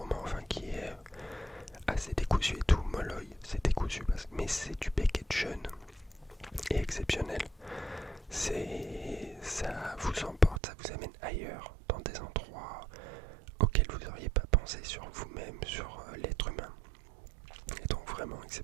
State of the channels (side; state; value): left; drops out; at 10.6 s